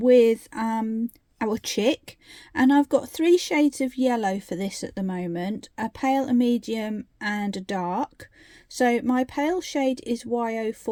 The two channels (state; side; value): identical; both; correlation 1.00